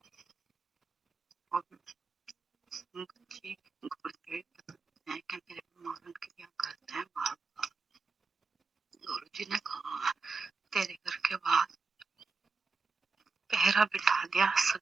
और बच्ची गुरुदेव बताते हैं कि मेरे मारण क्रिया करते हैं बार बार। गुरु जी ने कहा तेरे घर के बाद पहरा बिठा दिया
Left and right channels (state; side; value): quieter; left; 4.3 dB